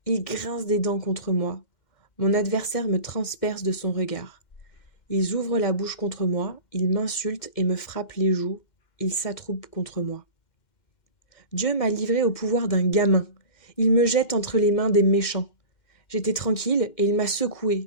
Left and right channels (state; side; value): late; right; 2.1 ms